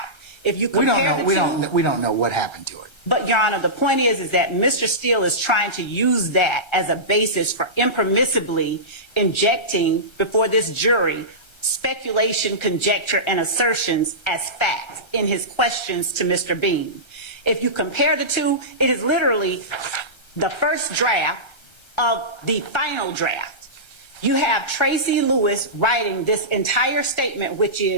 If you compare we don't know what happened to it. But Your Honor, the point is that Mr. Steele is trying to use that as a basis for impermissibly injecting before this jury speculation, conjecture, and assertions as fact in his questions to Mr. Bean. If you compare the two, it is literally the first draft of the final draft. You have Tracy Lewis writing this entire statement, which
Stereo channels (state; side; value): late; right; 1.3 ms